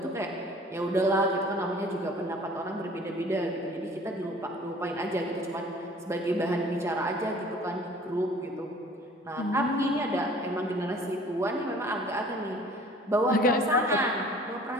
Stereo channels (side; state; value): both; normal; correlation 0.50